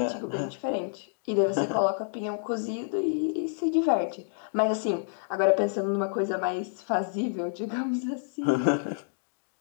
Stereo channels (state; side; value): silent; right; digital silence